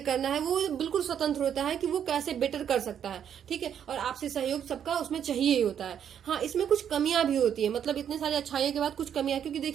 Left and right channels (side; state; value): left; quieter; 8.9 dB